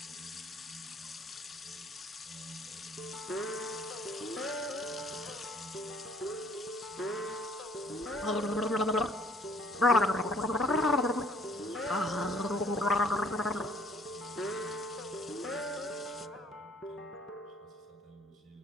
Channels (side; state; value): both; normal; correlation 0.59